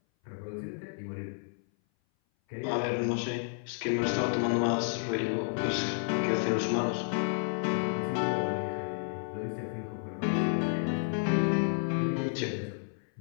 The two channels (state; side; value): silent; right; 57 dB below the other